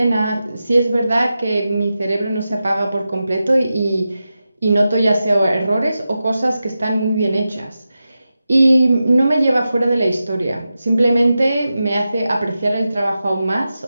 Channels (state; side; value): inverted; both; correlation -0.92